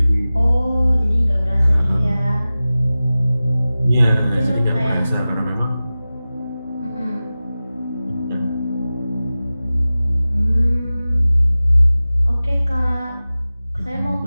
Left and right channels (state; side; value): inverted; both; correlation -0.96